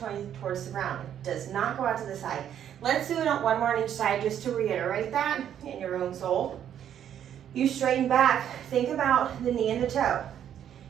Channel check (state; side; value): quieter; left; 9.8 dB